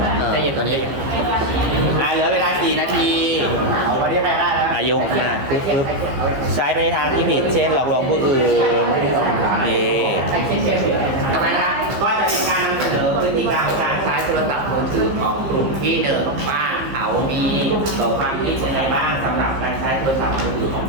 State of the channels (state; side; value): late; left; 15 ms